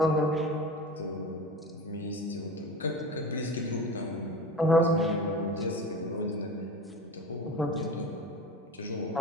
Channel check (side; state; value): both; normal; correlation 0.31